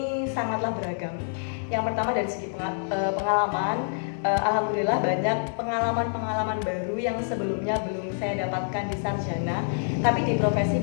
sangatlah beragam. Yang pertama dari segi pengalaman, alhamdulillah banyak pengalaman-pengalaman baru yang sebelumnya belum saya dapatkan di sarjana, tapi di profesi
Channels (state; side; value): silent; right; digital silence